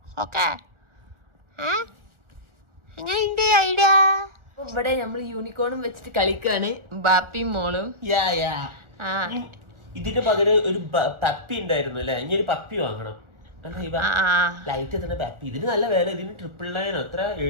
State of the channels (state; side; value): late; left; 1.4 ms